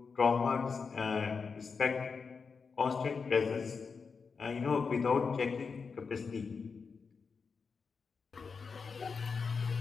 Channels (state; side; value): quieter; right; 5.2 dB